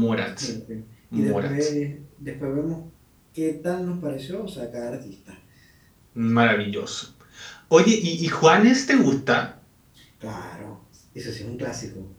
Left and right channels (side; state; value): both; identical; correlation 1.00